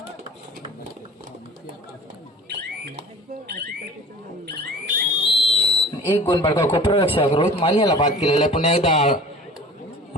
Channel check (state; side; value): normal; both; correlation 0.42